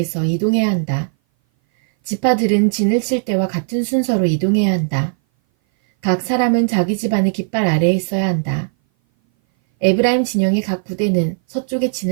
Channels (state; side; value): silent; left; 59 dB below the other